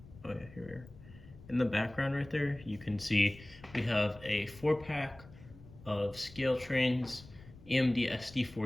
yeah, here we are. In the background right there, you can see we have a 4-pack of scale trains, EMD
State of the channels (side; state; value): left; noise; rumble, 20 dB below the sound